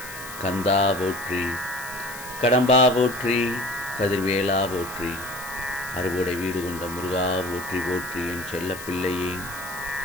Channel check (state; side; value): noise; left; hiss, 13 dB below the sound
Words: கந்தா போற்றி, கடம்பா போற்றி, கதிர்வேலா போற்றி, அறுபடை வீடு கொண்ட முருகா போற்றி போற்றி. என் செல்ல பிள்ளையே,